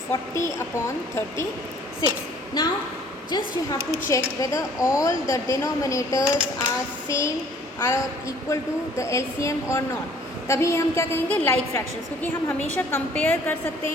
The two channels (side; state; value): both; normal; correlation 0.56